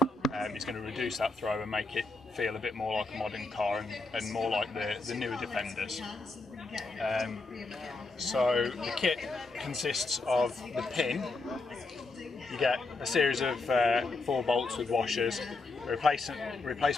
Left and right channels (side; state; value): right; quieter; 3.4 dB